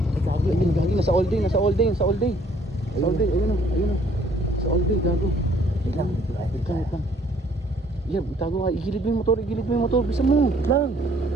Ay, Gagi. Nasa all day. Ayun o. Sa all day, gago. Wait lang. Yan, itago ka. Igilid mo yung motor. Bisa mo. Wait lang.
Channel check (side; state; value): both; normal; correlation 0.61